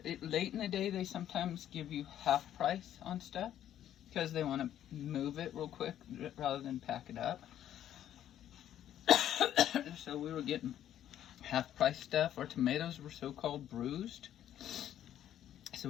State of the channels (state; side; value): quieter; right; 11.1 dB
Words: Late in the day, they sometimes give you half price on stuff because they want to move it real quick rather than pack it up. So we were getting half price stuff. Our tomatoes were so-called bruised. So